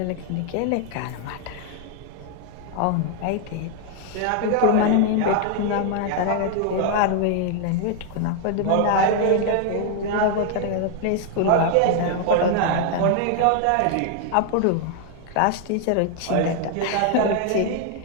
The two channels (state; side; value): different; both; correlation 0.00